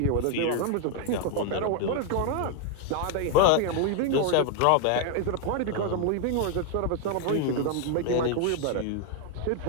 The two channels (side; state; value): both; different; correlation 0.00